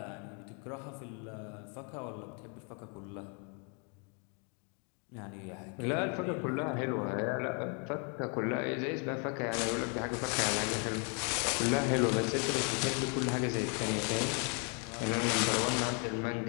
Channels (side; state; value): right; quieter; 37.5 dB